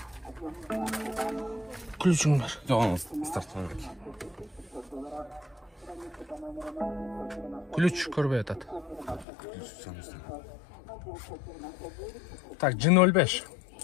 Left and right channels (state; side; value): drops out; right; at 9.2 s